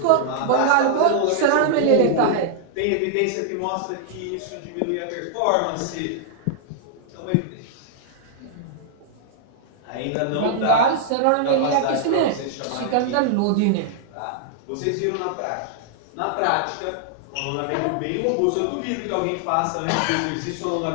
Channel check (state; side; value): different; both; correlation -0.01